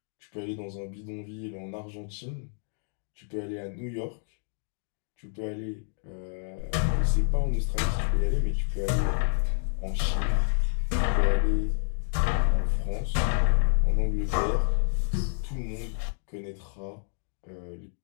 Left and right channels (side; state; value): right; silent; 56 dB below the other